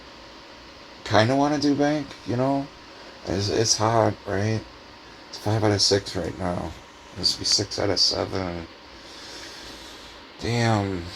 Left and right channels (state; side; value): identical; both; correlation 1.00